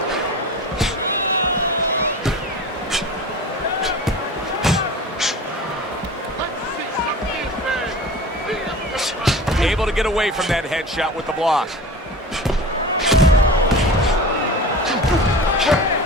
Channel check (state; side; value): normal; both; correlation 0.35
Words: Able to get away from that headshot with the block.